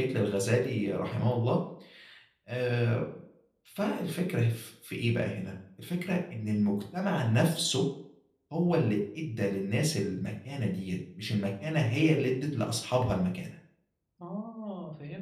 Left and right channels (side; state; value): both; identical; correlation 1.00